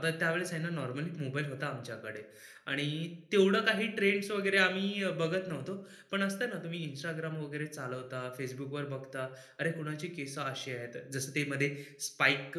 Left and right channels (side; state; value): both; identical; correlation 1.00